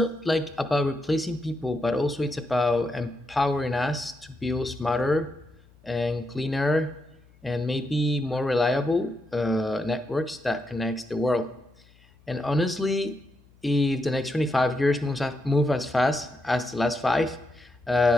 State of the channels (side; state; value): left; noise; hum, 29 dB below the sound